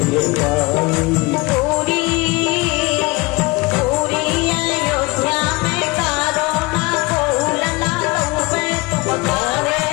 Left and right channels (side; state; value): right; quieter; 24.2 dB